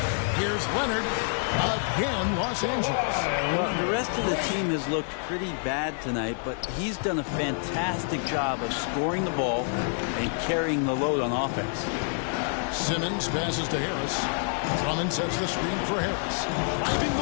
Here's Leonard. Again, Los Angeles. Well, the rest of the team has looked pretty bad tonight, but he's done a fantastic job of scoring the ball and carrying the load on offense. Simmons passes to Harris. Drummond sets the screen for Harris. Finding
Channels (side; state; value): right; silent; 60 dB below the other